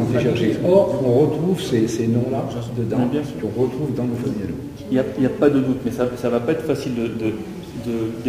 été cherchés. Or, on retrouve ces noms-là dedans, qu'on retrouve dans nos familles. Il n'y a pas de doute, mais ça ne va pas être facile de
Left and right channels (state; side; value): identical; both; correlation 1.00